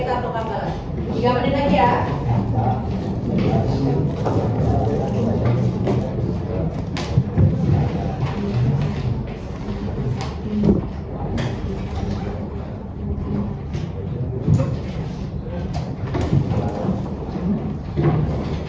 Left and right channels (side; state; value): both; identical; correlation 1.00